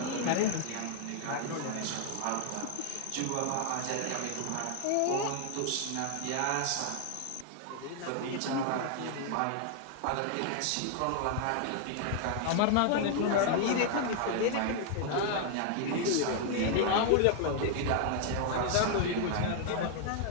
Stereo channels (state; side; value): different; both; correlation 0.00